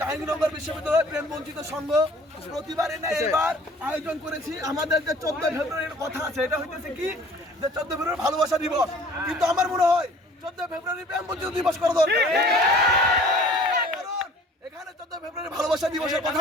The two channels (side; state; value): both; normal; correlation 0.50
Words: বিশ্ববিদ্যালয় প্রেম বঞ্চিত সংঘ প্রতিবারে না এবার আয়োজন করেছি। আমাদের যে 14 ফেব্রুয়ারির কথা আছে, এটা হইতেছে কি যে 14 ফেব্রুয়ারি ভালোবাসা দিবস, কিন্তু আমার মনে হয় 14 ফেব্রুয়ারি প্রেম বঞ্চিত দিবস করা দরকার। কারণ এখানে 14 ফেব্রুয়ারি ভালোবাসা দিবসের কথা